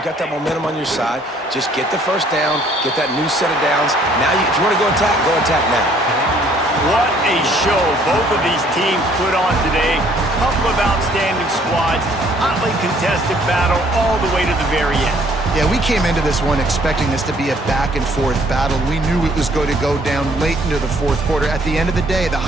got that momentum on your side. Just get the first down, get that new set of downs. Now, if you want to go attack now. What a show both of these teams put on today. Couple of outstanding squads, hotly contested battle all the way to the very end. Yeah, we came into this one expecting this to be a back-and-forth battle. We knew it was going to go down late into the fourth quarter. At the end of the day, the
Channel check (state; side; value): normal; both; correlation 0.61